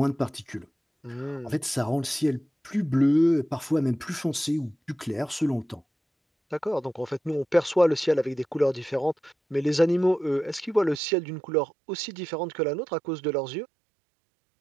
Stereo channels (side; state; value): left; drops out; at 11.0 s